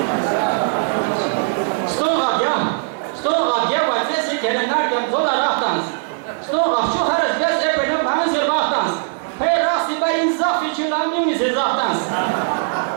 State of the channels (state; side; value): silent; left; digital silence